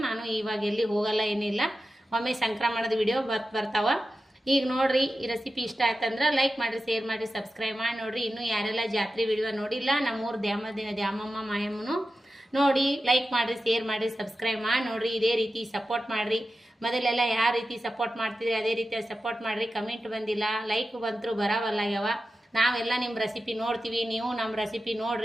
ನಾನು ಇವಾಗ ಎಲ್ಲಿ ಹೋಗಲ್ಲ, ಏನಿಲ್ಲ. ಒಮ್ಮೆ ಸಂಕ್ರಮಣದ ವಿಡಿಯೋ ಬರ್ತಾವ. ಈಗ ನೋಡ್ರಿ, ಈ ರೆಸಿಪಿ ಇಷ್ಟ ಆಯ್ತಂದ್ರೆ ಲೈಕ್ ಮಾಡಿರಿ, ಶೇರ್ ಮಾಡಿರಿ, ಸಬ್ಸ್ಕ್ರೈಬ್ ಮಾಡಿ ನೋಡ್ರಿ. ಇನ್ನೂ ಯಾರೆಲ್ಲ ಜಾತ್ರೆ ವಿಡಿಯೋ ನೋಡಿಲ್ಲ, ನಮ್ಮೂರು ದ್ಯಾಮಮ್ಮ ಮಾಯಮ್ಮನು ನೋಡಿ, ಲೈಕ್ ಮಾಡಿರಿ, ಶೇರ್ ಮಾಡಿರಿ, ಸಬ್ಸ್ಕ್ರೈಬ್ ಮಾಡಿ ನೋಡ್ರಿ. ಇದೇ ರೀತಿ ಸಪೋರ್ಟ್ ಮಾಡಿರಿ. ಮೊದಲೆಲ್ಲ ಯಾವ ರೀತಿ ಸಪೋರ್ಟ್ ಮಾಡ್ತಿದ್ರಿ ಅದೇ ರೀತಿ ಸಪೋರ್ಟ್ ಮಾಡಿರಿ. ಕಮೆಂಟ್ ಬಂದಿಲ್ಲ, ಲೈಕ್ ಬಂತರೂ ಬರವಲ್ಲ ಯಾವ. ನಾವೆಲ್ಲ ನಿಮ್ಮ ರೆಸಿಪಿ ನೋಡ್ತೀವಿ, ನೀವು ನಮ್ಮ ರೆಸಿಪಿ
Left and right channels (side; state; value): both; normal; correlation 0.93